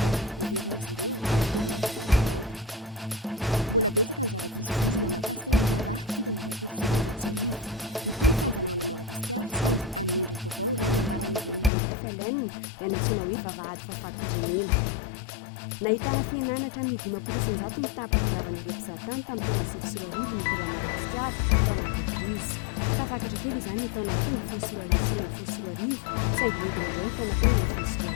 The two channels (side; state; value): right; drops out; at 11.7 s